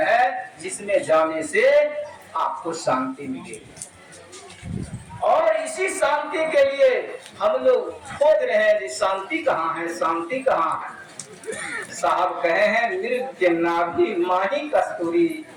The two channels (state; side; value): identical; both; correlation 1.00